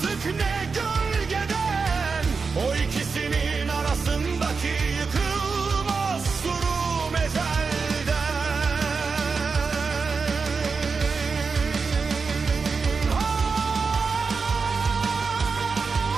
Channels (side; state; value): left; quieter; 4.9 dB